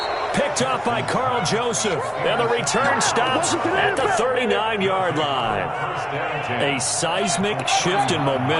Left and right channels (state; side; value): identical; both; correlation 1.00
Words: Picked up by Carl Joseph. And the return stops at the 39-yard line. A seismic shift in